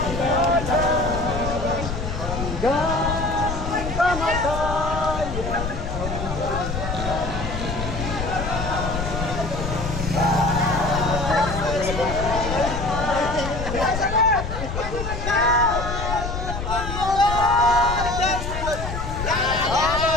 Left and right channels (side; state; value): left; noise; rumble, 5 dB below the sound